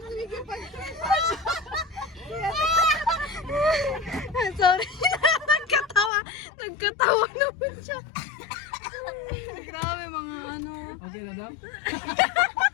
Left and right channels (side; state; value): right; drops out; at 6.1 s